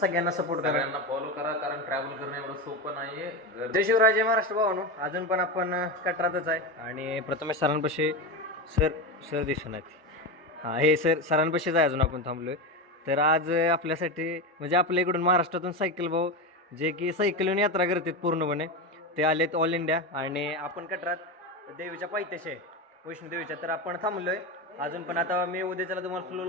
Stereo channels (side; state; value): both; normal; correlation 0.17